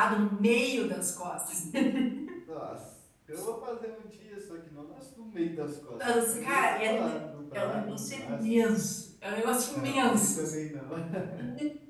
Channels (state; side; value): identical; both; correlation 1.00